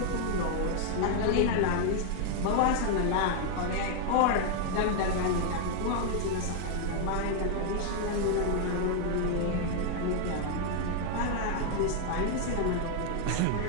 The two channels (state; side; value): different; both; correlation 0.00